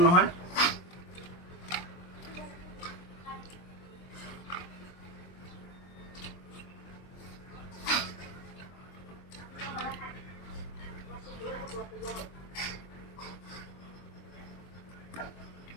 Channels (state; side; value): late; right; 23 ms